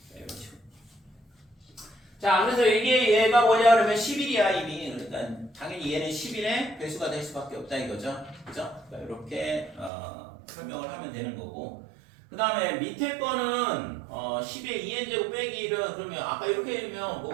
이런 식으로. 자 그래서 이게 얘가 뭐냐 그러면 11이야 이미. 그러니까 당연히 얘는 11의 배수가 될 수밖에 없다 이거죠. 그죠? 그러니까 이렇게 설명을 하면 되는 거고. 그 다음에 밑에 거는 10의 2n제곱 빼기를 그러면 아까 이렇게 되면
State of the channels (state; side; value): drops out; left; at 9.9 s